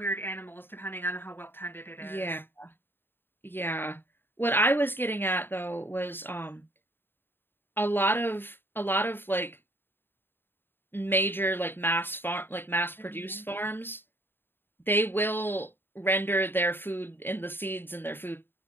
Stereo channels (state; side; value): late; right; 0.10 ms